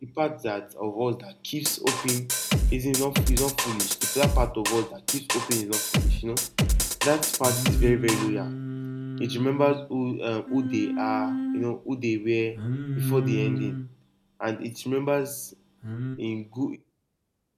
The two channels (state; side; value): identical; both; correlation 1.00